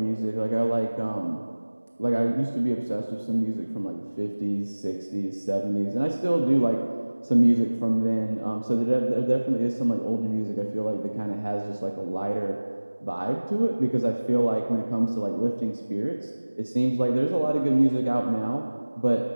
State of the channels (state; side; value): inverted; both; correlation -1.00